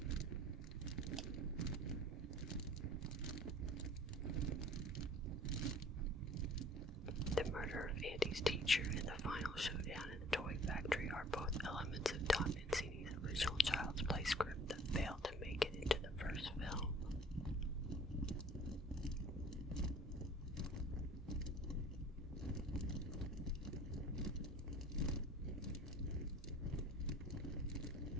The murder of Andy's teacher and the final showdown in the toy factory are both elements of Tom Mancini's original Child's Play script that failed to make it into the first film.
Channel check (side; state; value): both; normal; correlation 0.48